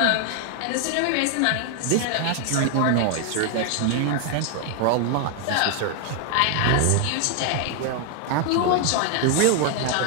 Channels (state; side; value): different; both; correlation 0.00